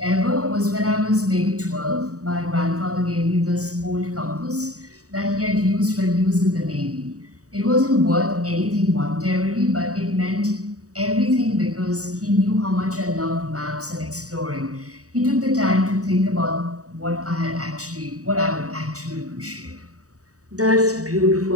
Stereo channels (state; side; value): late; left; 0.66 ms